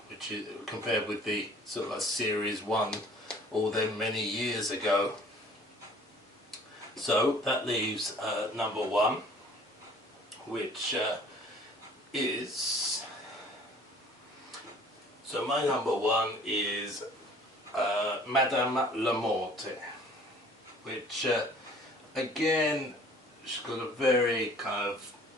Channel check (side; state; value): both; normal; correlation 0.52